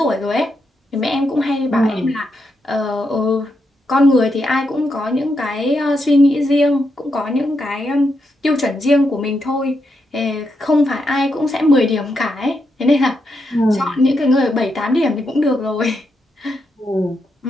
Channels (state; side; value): normal; both; correlation 0.82